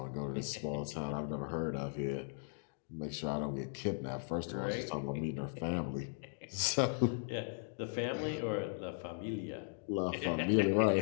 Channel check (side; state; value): right; silent; digital silence